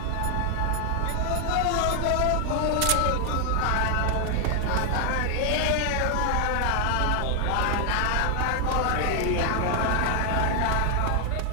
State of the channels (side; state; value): both; different; correlation 0.00